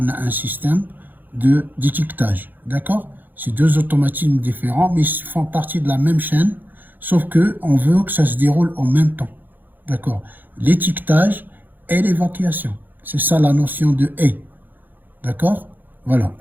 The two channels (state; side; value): late; left; 0.088 ms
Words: a un système d'étiquetage, d'accord? C'est deux automatismes différents, mais ils font partie de la même chaîne, sauf que on veut que ça se déroule en même temps, d'accord? L'étiquetage et l'évacuation. C'est ça la notion de et. D'accord? Voilà.